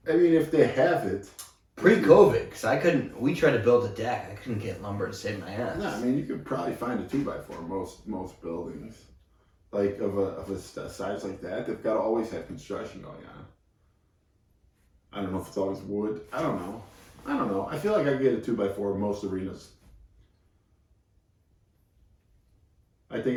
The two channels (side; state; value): both; identical; correlation 1.00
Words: I mean, if they have it. Pre-COVID, because we tried to build a deck. I couldn't get lumber to save my ass. No, I mean, you could probably find a 2x4 most buildings. Like, of a size like that, they've got to always have construction going on. I don't know if it's always wood. I don't know. I feel like I get a 2x4 in most arenas. I